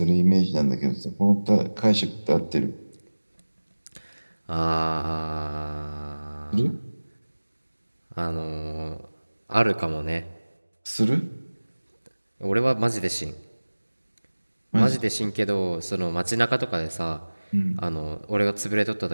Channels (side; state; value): both; inverted; correlation -1.00